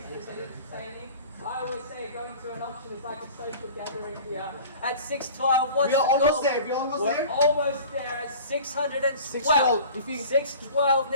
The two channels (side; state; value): both; inverted; correlation -0.42